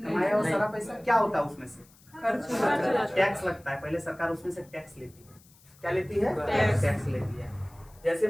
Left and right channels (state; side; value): noise; left; hiss, 27 dB below the sound